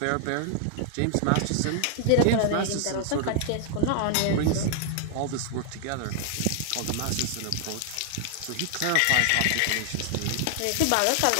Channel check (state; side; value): different; both; correlation 0.00